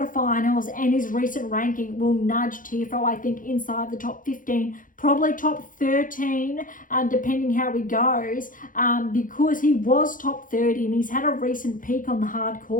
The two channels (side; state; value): right; late; 0.39 ms